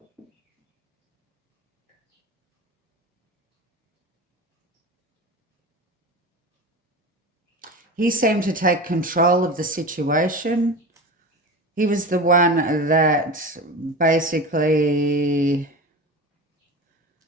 He seemed to take control of the situation. He was the one that basically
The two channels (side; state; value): both; normal; correlation 0.29